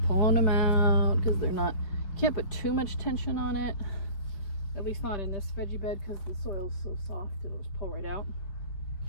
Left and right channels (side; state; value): right; late; 5.3 ms